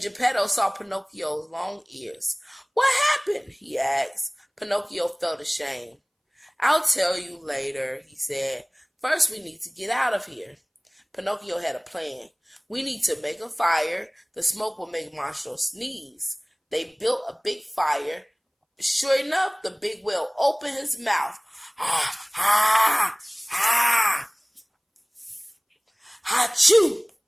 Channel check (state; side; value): identical; both; correlation 1.00